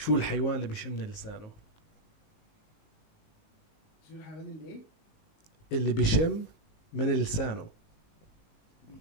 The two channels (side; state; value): right; late; 19 ms